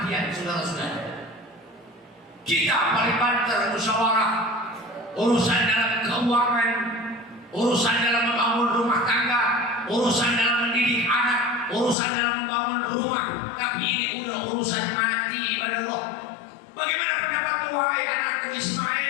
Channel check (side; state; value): right; drops out; at 12.0 s